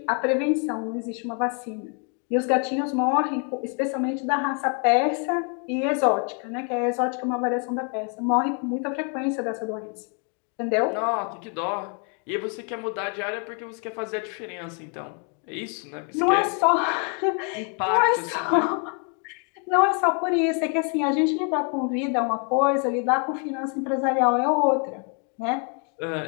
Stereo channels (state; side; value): quieter; right; 39.3 dB